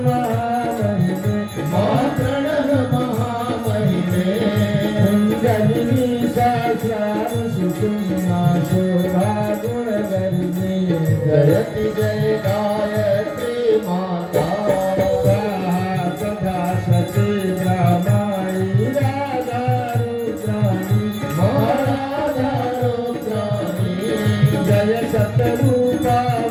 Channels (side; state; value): both; identical; correlation 1.00